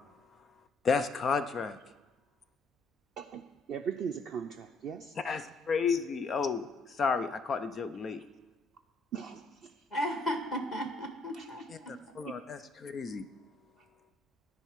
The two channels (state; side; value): quieter; right; 3.1 dB